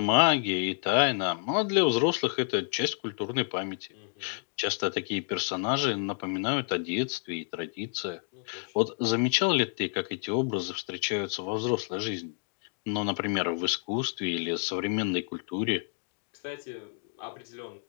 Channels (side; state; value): right; silent; 58 dB below the other